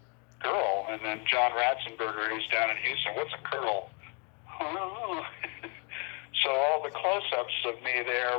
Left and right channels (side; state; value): right; quieter; 35.4 dB